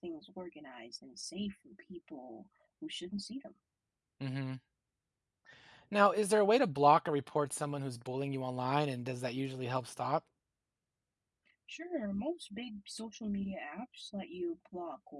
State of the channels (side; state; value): both; identical; correlation 1.00